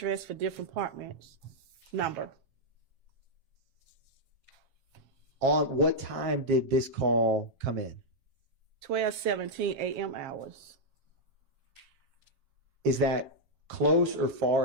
for different apartments. Number. On what time did this call come in? 12:17 a.m. hours. Is that close or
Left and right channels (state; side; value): late; left; 7.4 ms